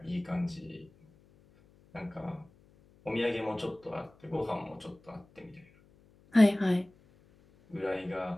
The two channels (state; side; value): noise; left; hum, 29 dB below the sound